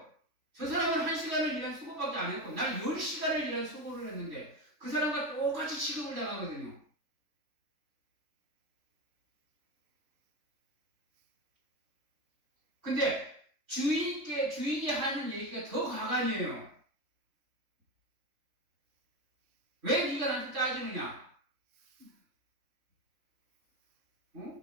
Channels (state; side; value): late; left; 3.4 ms